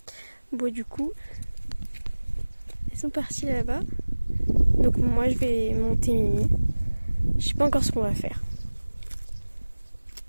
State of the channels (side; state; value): both; inverted; correlation -1.00